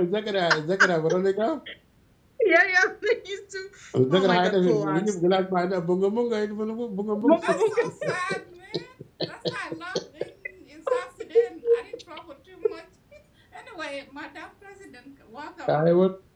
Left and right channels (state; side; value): identical; both; correlation 1.00